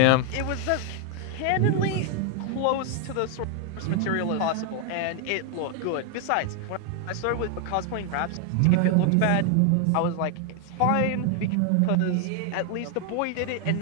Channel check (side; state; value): both; different; correlation 0.00